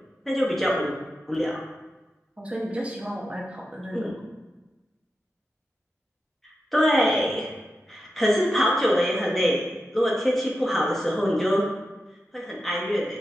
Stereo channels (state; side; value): normal; both; correlation 0.89